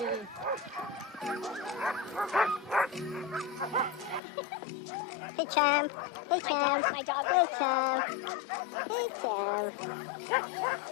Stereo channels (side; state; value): right; drops out; at 4.2 s